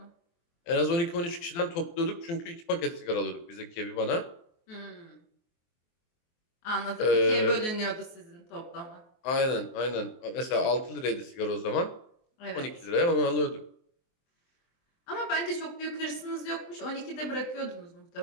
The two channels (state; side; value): late; right; 23 ms